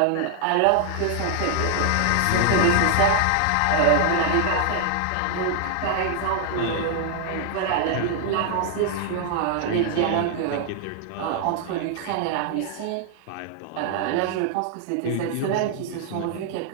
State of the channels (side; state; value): both; different; correlation 0.00